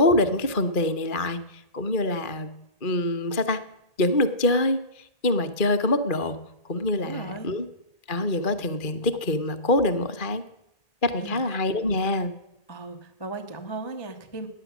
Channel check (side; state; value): right; late; 2.4 ms